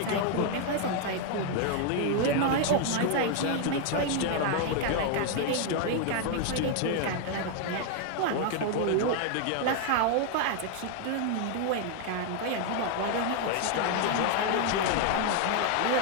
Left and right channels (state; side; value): different; both; correlation 0.00